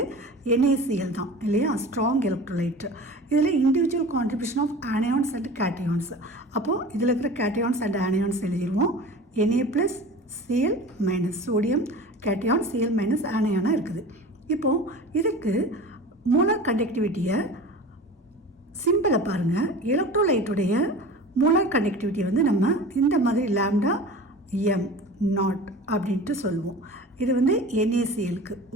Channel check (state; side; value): normal; both; correlation 0.37